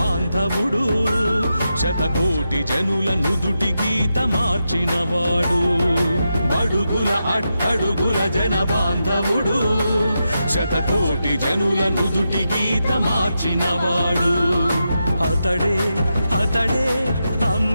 శతకోటి జనుల నుదుటి గీత మార్చినవాడు. బడుగుల అట్టడుగుల జన బాంధవుడు శతకోటి జనుల నుదుటి గీత మార్చినవాడు. అతడే అతడే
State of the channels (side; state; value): both; inverted; correlation -0.87